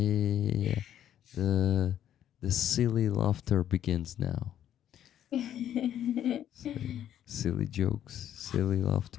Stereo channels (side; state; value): right; quieter; 10.7 dB